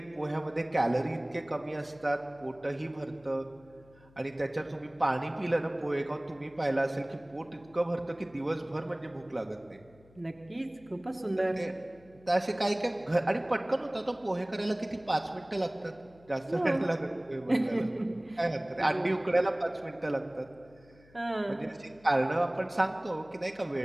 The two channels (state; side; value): noise; left; hum, 26 dB below the sound